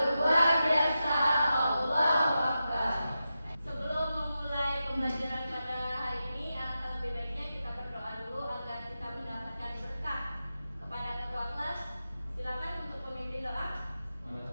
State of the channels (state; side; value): inverted; both; correlation -0.90